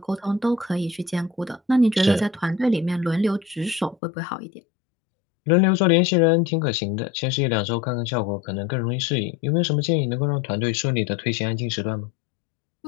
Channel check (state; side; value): drops out; right; at 4.0 s